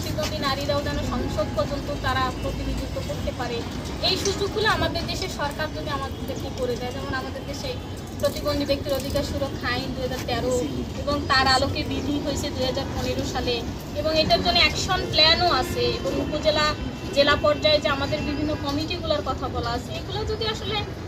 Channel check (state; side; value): identical; both; correlation 1.00